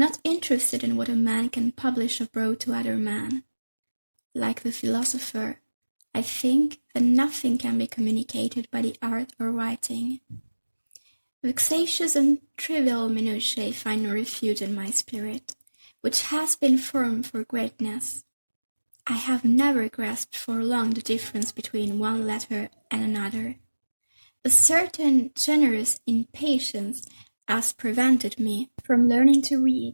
interested in what a man can publish abroad to other men. Like the philosopher, I think that nothing can be communicated by the art of writing. Vexatious and trivial minutiae find no refuge in my spirit, which has been formed for greatness. I have never grasped for long the difference between one letter and another. A certain generous impatience has prevented me from learning to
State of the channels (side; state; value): both; inverted; correlation -1.00